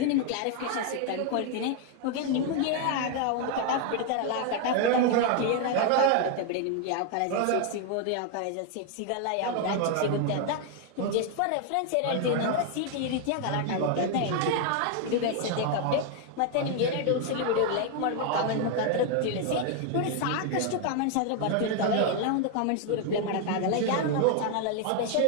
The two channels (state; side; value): different; both; correlation 0.00